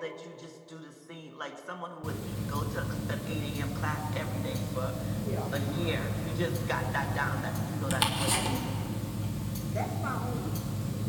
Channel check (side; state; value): both; identical; correlation 1.00